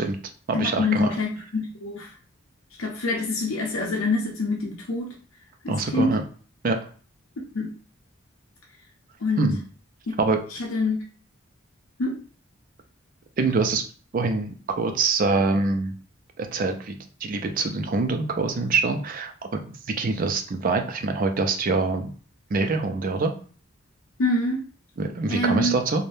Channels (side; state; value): both; normal; correlation 0.42